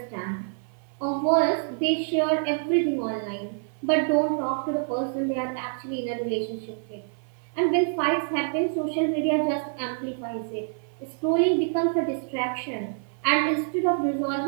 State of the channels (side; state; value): left; silent; 56 dB below the other